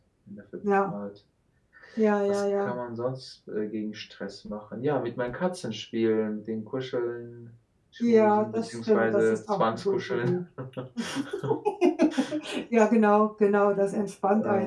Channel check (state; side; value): identical; both; correlation 1.00